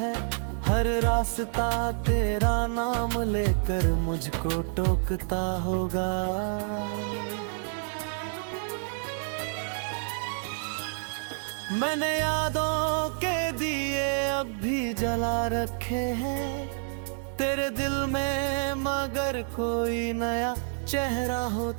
हर रास्ता तेरा नाम लेकर मुझको टोकता होगा। मैंने यादों के दिए अब भी जला रखे हैं तेरे दिल में, मगर कोई नया चेहरा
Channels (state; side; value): silent; left; digital silence